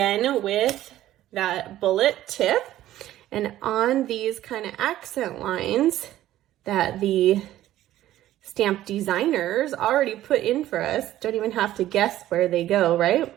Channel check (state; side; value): quieter; left; 13.8 dB